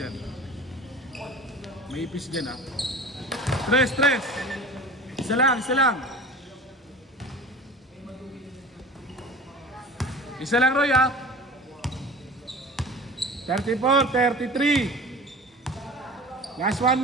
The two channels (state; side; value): normal; both; correlation 0.38